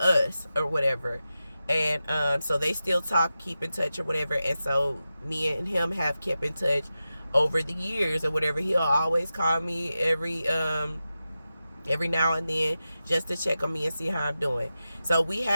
or whatever. And so they still talk, keep in touch or whatever. And so me and him have kept in touch over the years or whatever. He'll always call me every now and then just to check on me and see how I'm doing. So we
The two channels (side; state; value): both; inverted; correlation -0.92